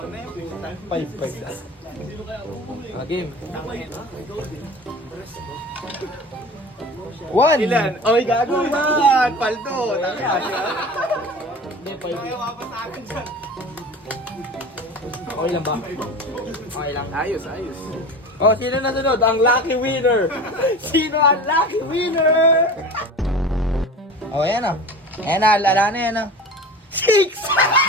na yung pumunta. 5. Game. 1! Ilan? Oy, gago. Man. Paldo. Hindi, 5. Ayaw ka sa akin dyan. Okay lang ba? Okay lang. Ayos, ayos. Oh, sino na sunod? Ang lucky winner! Sino ang lucky winner? Oh, yan na. Ayan na, lala na yan na. 6!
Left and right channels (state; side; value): normal; both; correlation 0.35